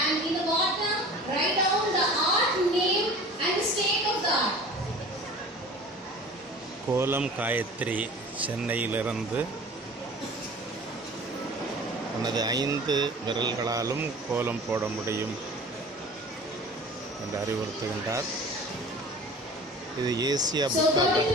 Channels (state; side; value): normal; both; correlation 0.42